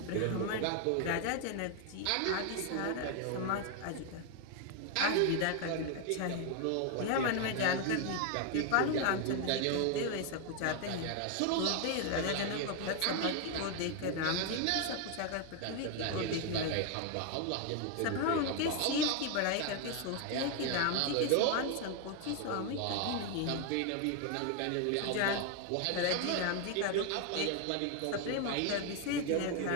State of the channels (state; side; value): different; both; correlation 0.01